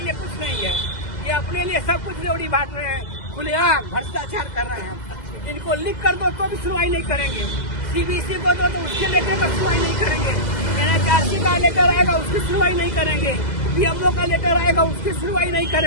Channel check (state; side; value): late; right; 2.0 ms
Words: लिए कुछ नहीं है। ये अपने लिए सब कुछ रेवड़ी बांट रहे हैं, खुलेआम भ्रष्टाचार कर रहे हैं। इनको लिख कर दो तो भी सुनवाई नहीं करेंगे, सीबीसी को दो तो उसके लेटर पर सुनवाई नहीं करेंगे, एनएचआरसी का लेटर आएगा उसकी सुनवाई नहीं करेंगे, पीएमओ का लेटर आएगा उसकी सुनवाई नहीं